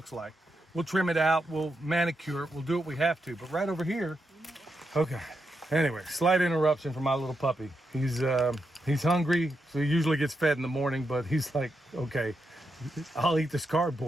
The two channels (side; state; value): both; normal; correlation 0.85